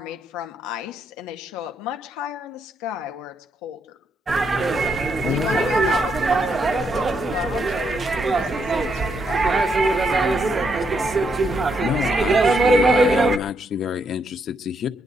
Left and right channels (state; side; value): normal; both; correlation 0.77